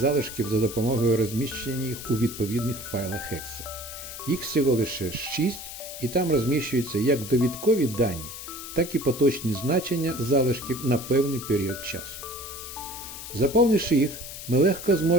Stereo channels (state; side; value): noise; left; hiss, 10 dB below the sound